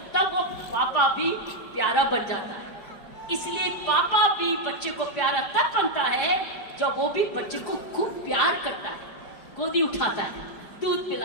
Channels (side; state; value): right; late; 5.1 ms